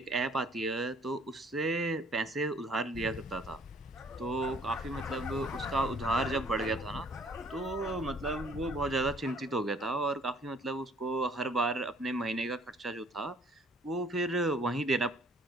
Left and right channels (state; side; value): normal; both; correlation 0.58